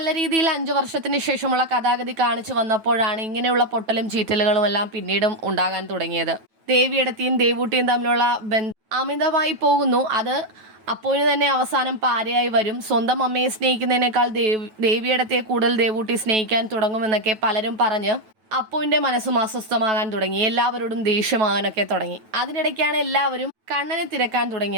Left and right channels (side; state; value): left; late; 9.2 ms